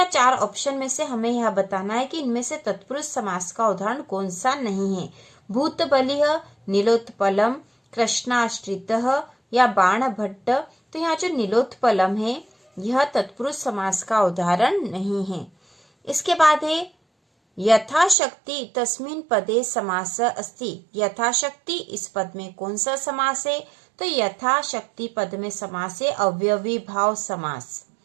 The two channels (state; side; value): drops out; left; at 18.2 s